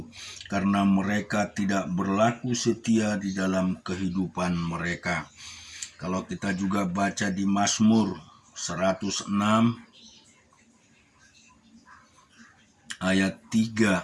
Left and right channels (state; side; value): identical; both; correlation 1.00